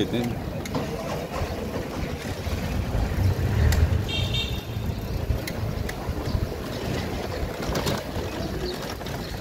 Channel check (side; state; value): both; identical; correlation 1.00